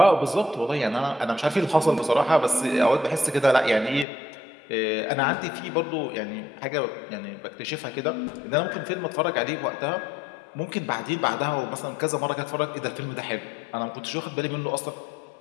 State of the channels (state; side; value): drops out; right; at 4.0 s